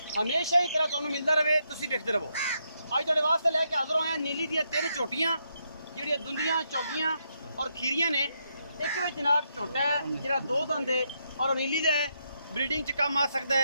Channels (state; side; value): inverted; both; correlation -0.79